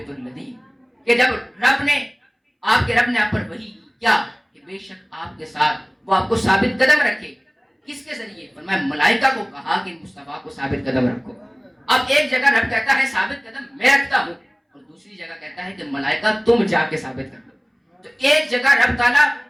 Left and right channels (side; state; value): both; identical; correlation 1.00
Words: الَّذِینَ، کہ جب رب نے آپ پر وحی کی کیا کہ بے شک آپ کے ساتھ وہ آپ کو ثابت قدم رکھے۔ کس کے ذریعے؟ فرمایا ملائکہ کو کہا کہ مصطفیٰ کو ثابت قدم رکھو۔ اب ایک جگہ رب کہتا ہے ثابت قدم میں رکھتا ہوں، اور دوسری جگہ کہتا ہے کہ ملائکہ تم جا کے ثابت کر دو۔ تو ایک جگہ رب تعالیٰ